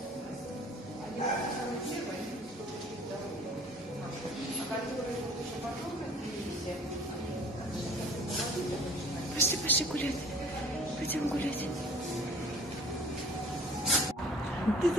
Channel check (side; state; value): both; normal; correlation 0.49